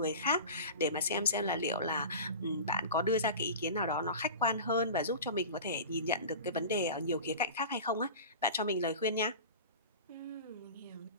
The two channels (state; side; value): inverted; both; correlation -0.34